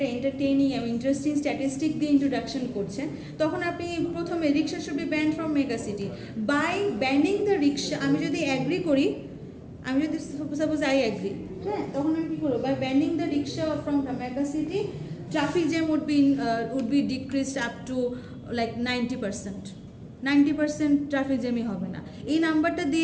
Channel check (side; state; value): both; identical; correlation 1.00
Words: এন্টারটেইনিং এবং ইন্টারেস্টিং স্ট্যাটিস্টিক দিয়ে ইন্ট্রোডাকশন করছেন, তখন আপনি প্রথমে rickshaw should be banned from mega city. By banning the rickshaw, আমি যদি অ্যাগ্রি করি, আমি যদি সাপোজ আই অ্যাগ্রি, হ্যাঁ, তখন আমি কী করবো? By banning the rickshaw from the mega city, traffic jam would be decreased up to like 90% traffic জ্যামই হবে না। এই নাম্বারটা